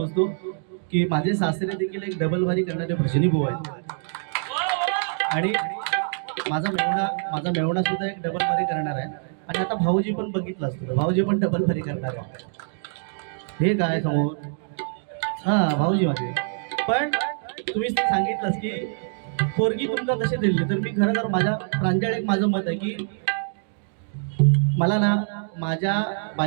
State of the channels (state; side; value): silent; left; digital silence